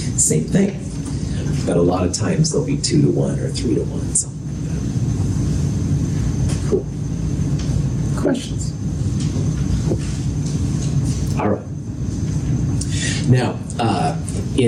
thing. But a lot of times they'll be 2 to 1 or 3 to 1, something like that. Cool. Questions? All right. Now,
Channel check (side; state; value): both; identical; correlation 1.00